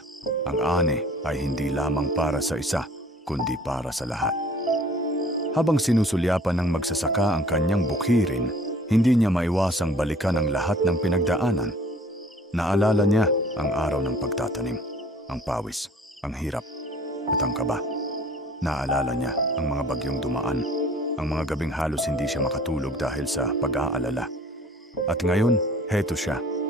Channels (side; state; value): both; normal; correlation 0.52